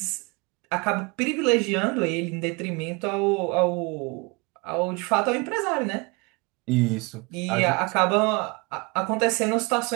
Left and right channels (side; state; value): left; quieter; 28.0 dB